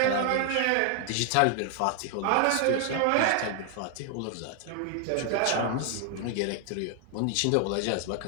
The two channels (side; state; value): both; different; correlation 0.00